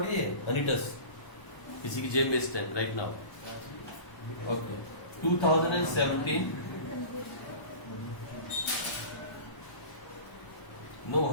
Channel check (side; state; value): right; late; 1.0 ms